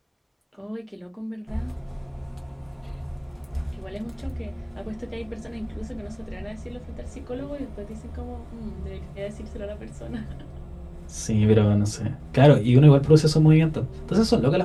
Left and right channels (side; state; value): both; identical; correlation 1.00